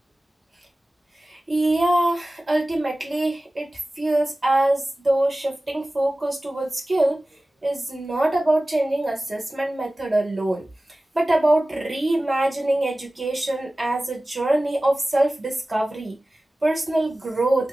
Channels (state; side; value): normal; both; correlation 0.97